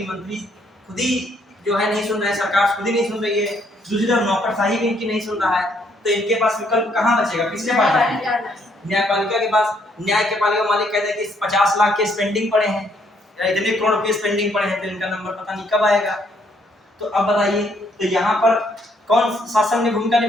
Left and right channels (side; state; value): both; normal; correlation 0.69